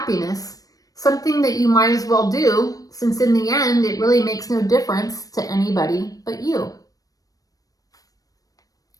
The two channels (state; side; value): late; right; 0.18 ms